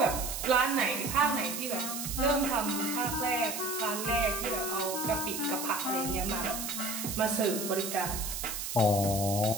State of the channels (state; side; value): noise; right; hiss, 5 dB below the sound